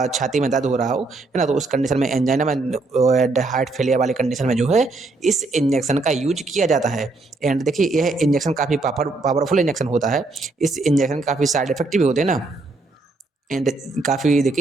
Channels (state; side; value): quieter; left; 3.4 dB